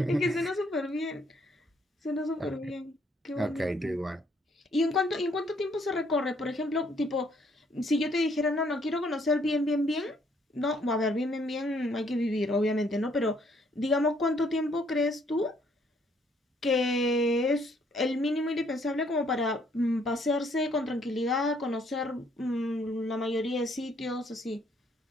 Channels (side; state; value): both; normal; correlation 0.67